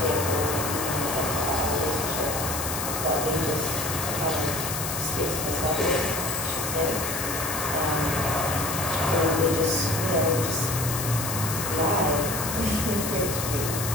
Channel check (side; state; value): left; noise; hiss, 4 dB below the sound